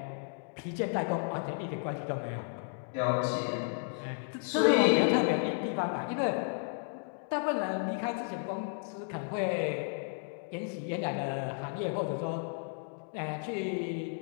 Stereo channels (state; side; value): silent; right; 56 dB below the other